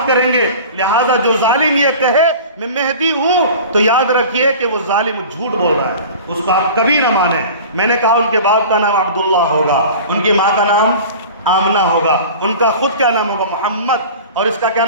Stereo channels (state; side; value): inverted; both; correlation -0.38